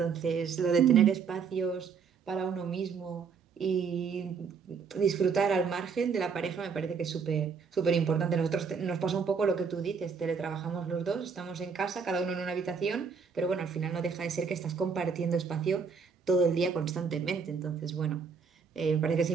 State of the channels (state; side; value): quieter; left; 5.9 dB